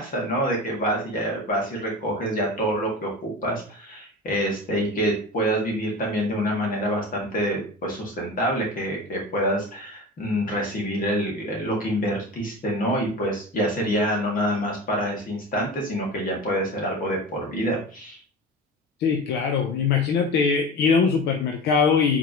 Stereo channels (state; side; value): normal; both; correlation 0.31